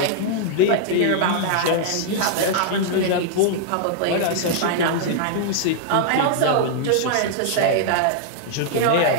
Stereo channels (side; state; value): both; different; correlation -0.01